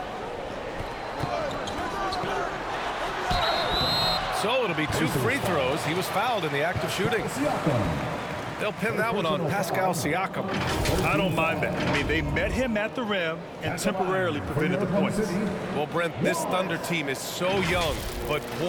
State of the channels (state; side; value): identical; both; correlation 1.00